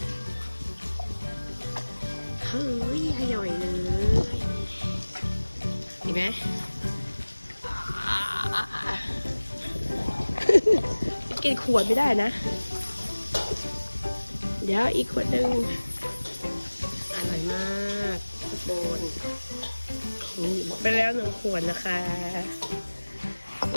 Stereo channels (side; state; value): both; inverted; correlation -1.00